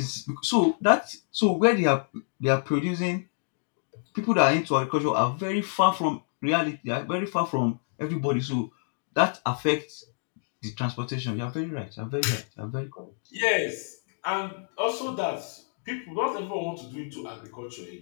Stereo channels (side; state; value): right; silent; digital silence